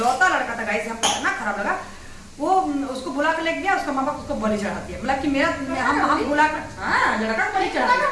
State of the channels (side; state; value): both; identical; correlation 1.00